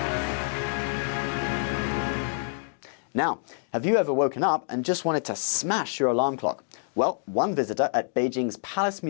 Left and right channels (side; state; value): right; silent; 58 dB below the other